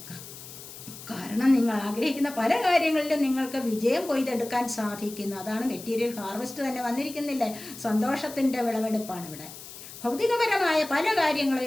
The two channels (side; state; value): left; noise; hiss, 14 dB below the sound